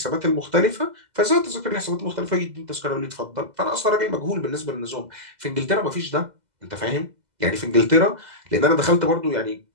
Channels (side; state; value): left; late; 2.0 ms